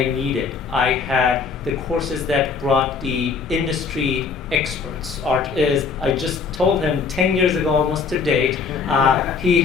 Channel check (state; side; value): quieter; right; 5.3 dB